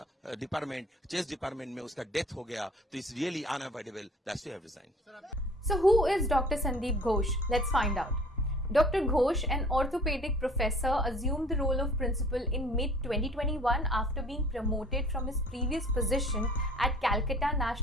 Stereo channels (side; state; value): both; normal; correlation 0.50